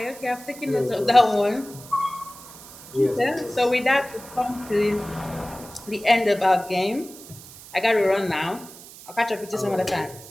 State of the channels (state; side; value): noise; right; hiss, 17 dB below the sound